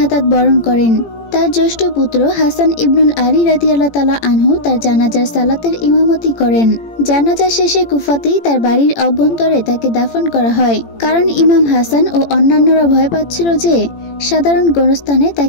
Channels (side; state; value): right; late; 18 ms